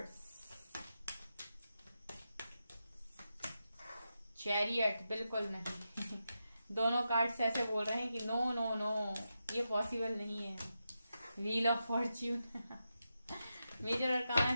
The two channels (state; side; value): inverted; both; correlation -0.88